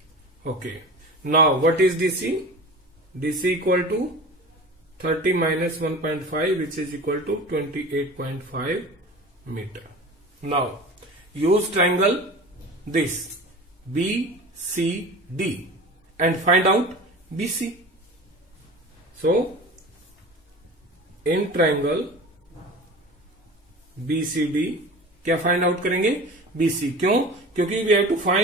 okay. Now what is DC? DC equal to 30 minus 1.5 which is equal to 28.5 meter. Now use triangle this BCD and find out BC. So in triangle BCD क्या फाइंड आउट करेंगे, BC। क्यों, क्योंकि we have to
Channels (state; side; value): normal; both; correlation 0.36